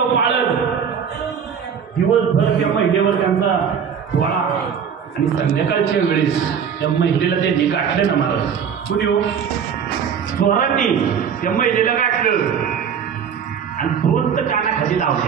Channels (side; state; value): left; quieter; 7.4 dB